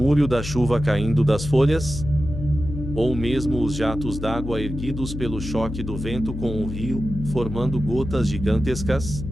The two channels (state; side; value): noise; left; hum, 7 dB below the sound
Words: da chuva caindo das folhas? Ou mesmo os jatos d'água erguidos pelo choque do vento com o rio, formando gotas gigantescas?